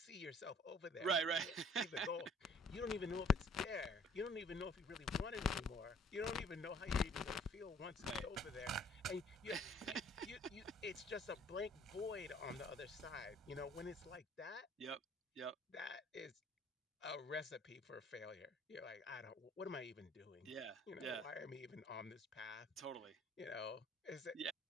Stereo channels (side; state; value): both; normal; correlation 0.56